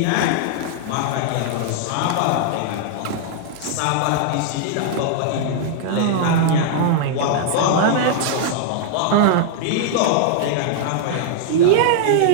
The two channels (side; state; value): both; different; correlation -0.01